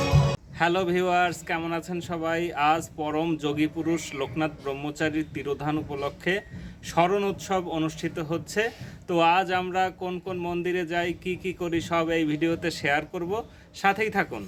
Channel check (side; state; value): both; identical; correlation 1.00